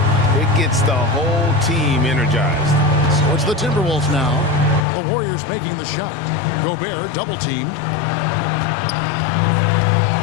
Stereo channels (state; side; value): drops out; right; at 4.9 s